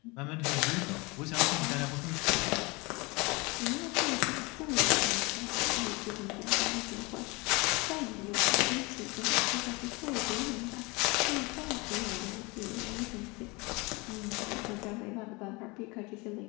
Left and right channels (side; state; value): right; quieter; 26.2 dB